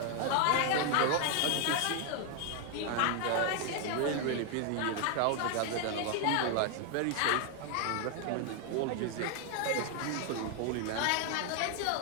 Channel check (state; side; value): different; both; correlation 0.00